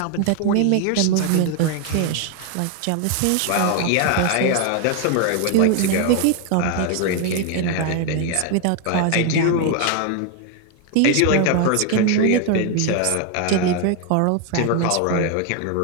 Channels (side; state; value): both; different; correlation 0.01